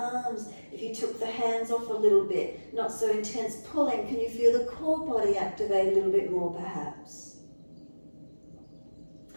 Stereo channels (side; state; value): both; inverted; correlation -1.00